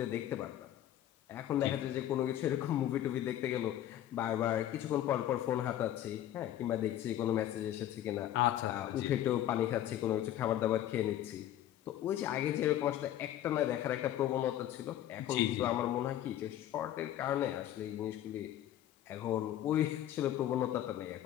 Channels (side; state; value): right; quieter; 12.2 dB